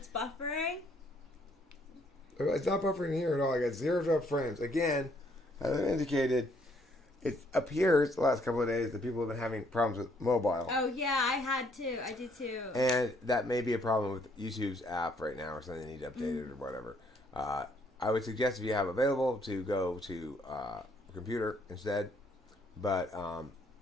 buffering? It's not buffering here at all. I got zeroed up frames. Again, as I indicated, it appears the last couple of days that people have been having problems with mobile. Oh, yeah, I did too. And that may be a problem with YouTube's app right now or something they need to update it or whatever. I would suggest if you have available to go to a computer instead. But all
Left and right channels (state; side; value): normal; both; correlation 0.67